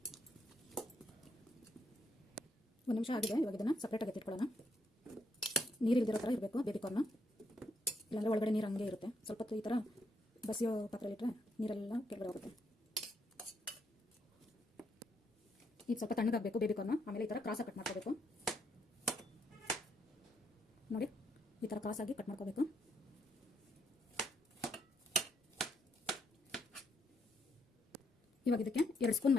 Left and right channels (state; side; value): normal; both; correlation 0.76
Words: ಒಂದು ನಿಮಿಷ ಆಗಿದೆ. ಇವಾಗ ಇದನ್ನು ಸಪ್ರೇಟಾಗಿ ಎತ್ತಿಟ್ಕೊಳ್ಳೋಣ. ನೀರು ಇಲ್ದಿರೋ ಥರ ಇರಬೇಕು ಬೇಬಿಕಾರ್ನ್, ಇಲ್ಲಾಂದರೆ ಒಳಗಡೆ ನೀರು ಹಂಗೆ ಇರುತ್ತೆ. ಸ್ವಲ್ಪ ಹೊತ್ತು ಈ ಥರ ಬಸಿಯೋ ಪಾತ್ರೆಯಲ್ಲಿಟ್ಟರೆ ನೀರೆಲ್ಲ ಕೆಳಗಡೆ ಹೋಗುತ್ತೆ. ಈಗ ಸ್ವಲ್ಪ ತಣ್ಣಗಾಗಬೇಕು ಬೇಬಿಕಾರ್ನ್. ಆಮೇಲೆ ಈ ಥರ ಕ್ರಾಸಾಗಿ ಕಟ್ ಮಾಡ್ಕೋಬೇಕು. ನೋಡಿ, ಈ ಥರ ಕ್ರಾಸಾಗಿ ಕಟ್ ಮಾಡ್ಕೋಬೇಕು. ಇವಾಗ ಇದಕ್ಕೆ 2 ಸ್ಪೂನ್